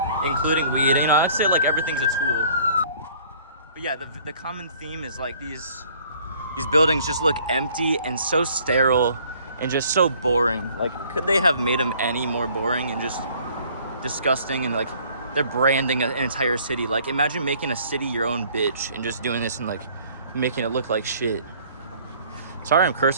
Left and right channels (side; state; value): both; inverted; correlation -0.57